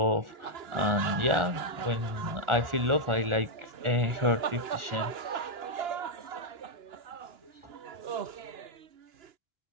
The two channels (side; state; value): left; late; 1.4 ms